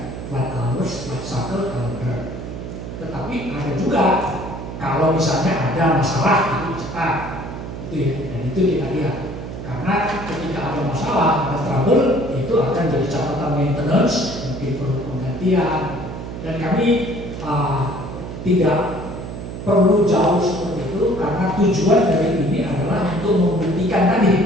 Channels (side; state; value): right; noise; hum, 8 dB below the sound